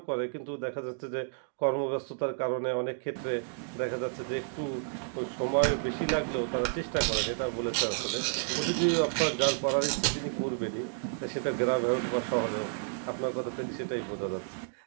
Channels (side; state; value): left; silent; digital silence